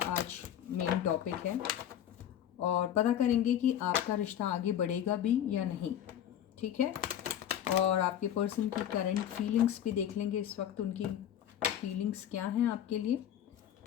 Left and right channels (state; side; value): quieter; right; 10.4 dB